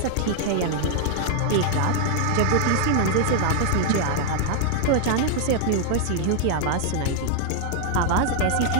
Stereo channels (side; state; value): both; different; correlation 0.00